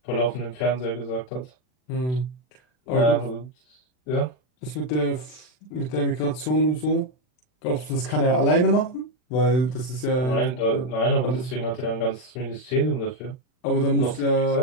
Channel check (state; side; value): late; right; 39 ms